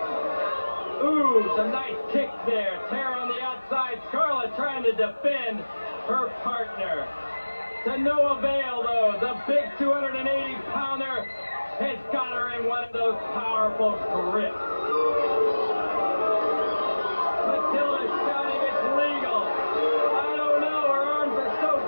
Ooh, some nice kicks there. Tara on the outside. Scarlett trying to defend her partner. To no avail, though. The big 280-pounder has got her in one of those powerful grips. Matilda's shouting it's legal. I don't know. Her arms are so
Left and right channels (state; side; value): inverted; both; correlation -1.00